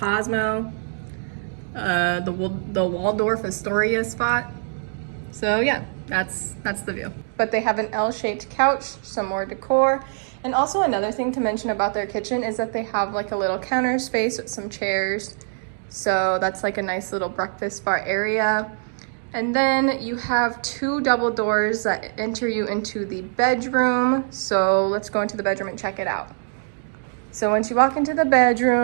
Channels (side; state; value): left; silent; digital silence